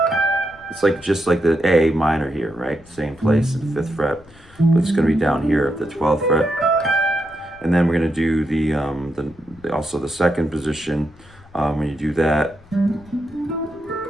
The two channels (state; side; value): noise; left; rumble, 25 dB below the sound